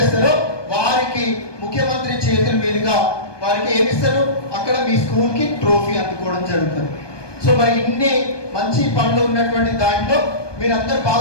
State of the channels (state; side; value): late; right; 1.2 ms